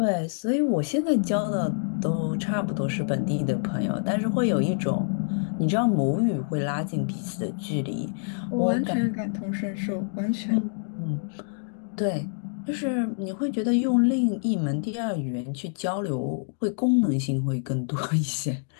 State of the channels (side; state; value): right; silent; digital silence